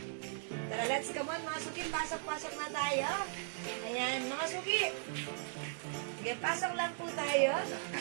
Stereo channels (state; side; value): silent; left; 53 dB below the other